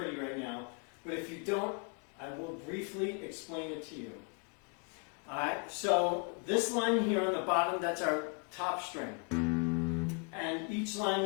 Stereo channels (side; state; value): right; quieter; 37.8 dB